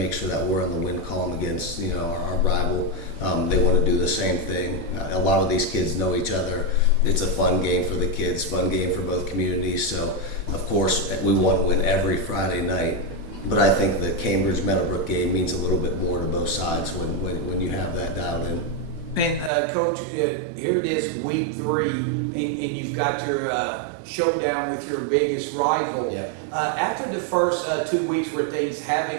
sure that we're in the win column against our rival. They want to do the same thing. A lot of these kids know each other. It's a fun game for the kids, fun game for both communities. So of course we want to win every Friday night. But I think the Cambridge Meadowbrook game means a little bit more to both sides when you have that dialed in. And Coach, here it is, week 3, and you've got your showdown with your biggest rival. Yeah. After the first 2 weeks where things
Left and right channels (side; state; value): left; drops out; at 19.5 s